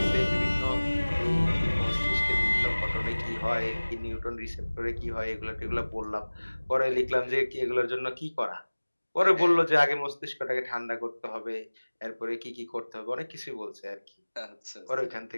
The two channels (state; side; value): inverted; both; correlation -1.00